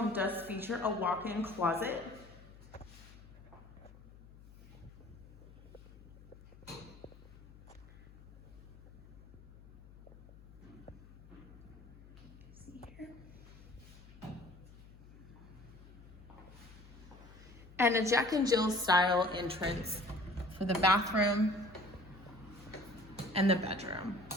does feature a walk-in closet, and a Jack and Jill style entrance for the bathroom and the bedroom.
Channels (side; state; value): left; noise; hum, 20 dB below the sound